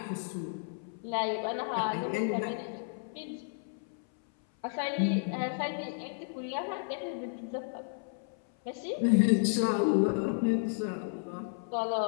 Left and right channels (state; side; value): silent; right; 56 dB below the other